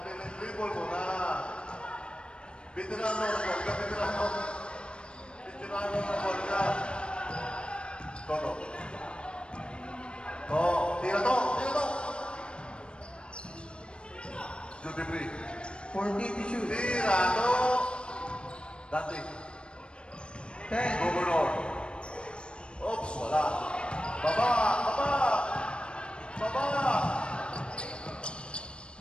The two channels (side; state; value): right; late; 0.056 ms